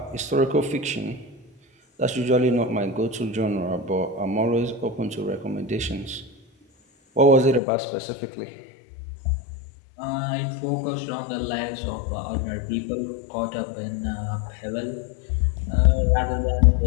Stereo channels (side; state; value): right; drops out; at 7.6 s